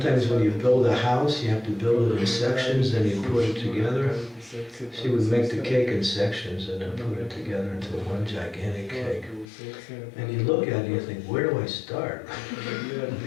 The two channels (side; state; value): right; drops out; at 9.5 s